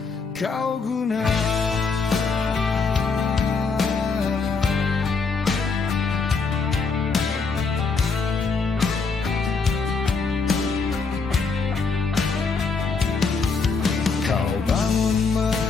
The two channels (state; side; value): quieter; right; 4.6 dB